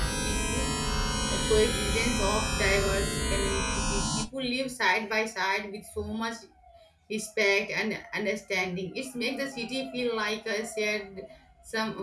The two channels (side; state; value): both; identical; correlation 1.00